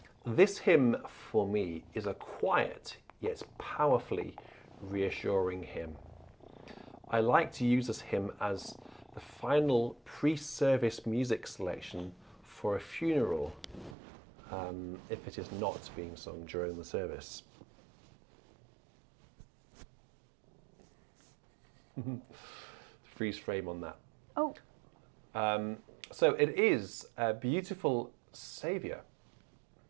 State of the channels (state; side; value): drops out; left; at 14.0 s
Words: "This hymn for me is a quiet yet powerfully reassuring hymn. I like to use this hymn as the final pre-service music selection for a funeral, if it is not being sung during the service." Freeze frame on that. Oh. So it is a beautiful Saviour.